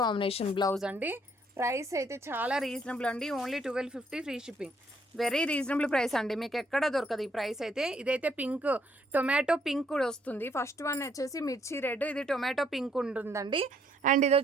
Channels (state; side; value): normal; both; correlation 0.69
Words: కాంబినేషన్ బ్లౌజ్ అండి. ప్రైస్ అయితే చాలా రీజనబుల్ అండి. Only 1250 free shipping. Very reasonable price అండి, మీకు ఎక్కడ దొరకదు ఈ ప్రైస్ అయితే. ఇదైతే పింక్, టొమాటో పింక్ కూడా వస్తుంది. ఫస్ట్ వన్ వచ్చేసి మిర్చి రెడ్, ఇది టొమాటో పింక్ ఉంటుందండి. అండ్ ఇది